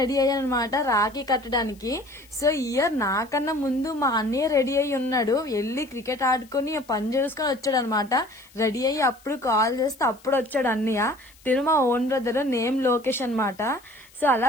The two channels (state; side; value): noise; left; hiss, 27 dB below the sound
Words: అయ్యానమాట రాఖీ కట్టడానికి. సో ఇయర్ నాకన్నా ముందు మా అన్నయ్య రెడీ అయ్యి ఉన్నాడు. వెళ్ళి క్రికెట్ ఆడుకుని పని చేసుకుని వచ్చాడు అనమాట. రెడీ అయ్యి అప్పుడు కాల్ చేస్తే అప్పుడు వచ్చాడు అన్నయ్య. తిను మా ఓన్ బ్రదర్, నేమ్ లోకేష్ అనమాట. సో